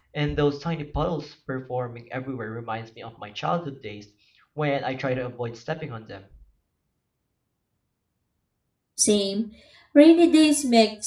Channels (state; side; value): identical; both; correlation 1.00